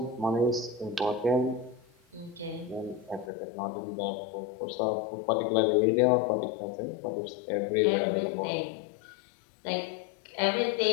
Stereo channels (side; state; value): right; drops out; at 3.3 s